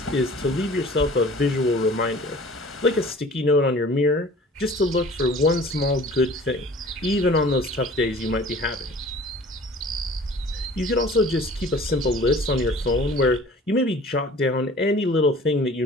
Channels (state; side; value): normal; both; correlation 0.47